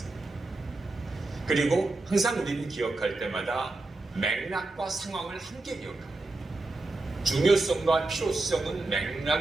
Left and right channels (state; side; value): quieter; left; 3.1 dB